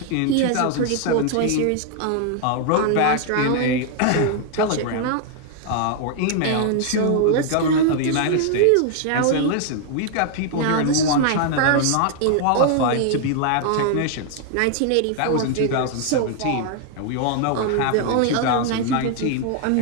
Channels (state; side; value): different; both; correlation 0.00